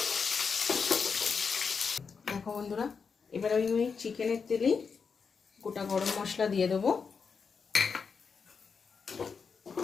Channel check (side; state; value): right; quieter; 5.6 dB